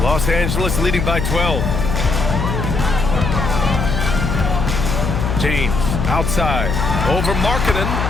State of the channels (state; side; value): noise; left; hum, 1 dB below the sound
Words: Los Angeles leading by 12. James outside, over Markkanen.